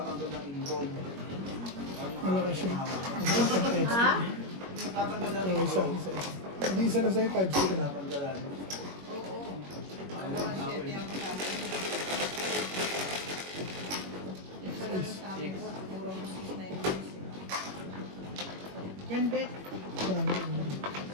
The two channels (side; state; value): left; late; 21 ms